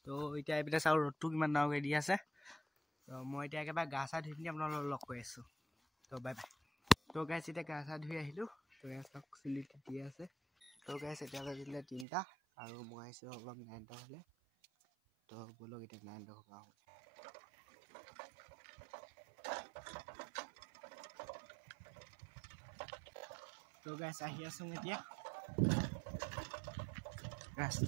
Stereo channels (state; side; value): drops out; left; at 12.1 s